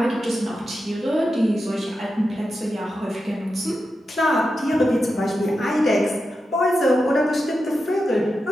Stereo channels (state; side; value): normal; both; correlation 0.89